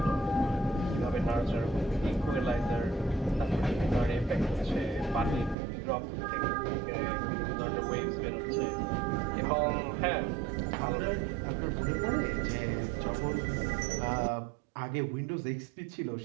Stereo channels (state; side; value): drops out; left; at 5.6 s